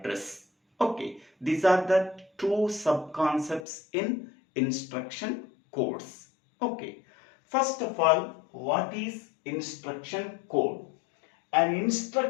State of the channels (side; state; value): right; drops out; at 3.7 s